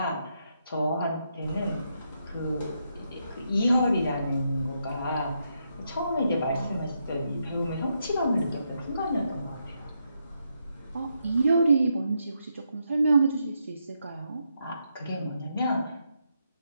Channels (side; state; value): both; inverted; correlation -0.81